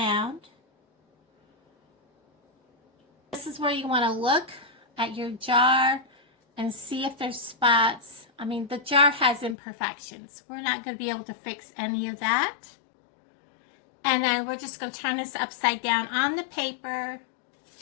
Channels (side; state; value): right; drops out; at 9.6 s